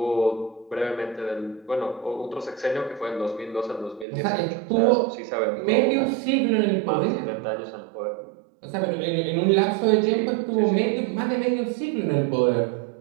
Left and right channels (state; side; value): drops out; left; at 4.0 s